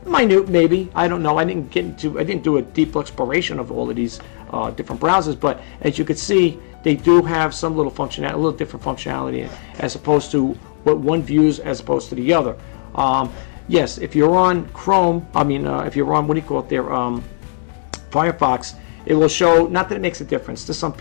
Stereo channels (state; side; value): silent; right; digital silence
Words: Minute, maybe, I don't know. I didn't do a deep exploration of all of these different browsers, but as you can see, they do have some little functionality, a little different functionality as opposed to what one views as opposed to the other. Yes, if you're on Chrome, if you're on, what do you call it there, Firefox, it will show, not that it makes a difference to some